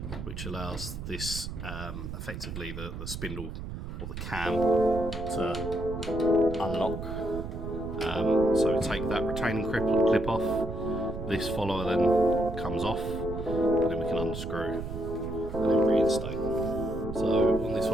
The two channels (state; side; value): noise; right; rumble, 8 dB below the sound